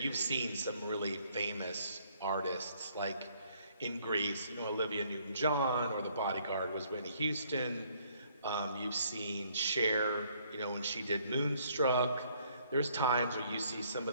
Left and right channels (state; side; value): inverted; both; correlation -0.65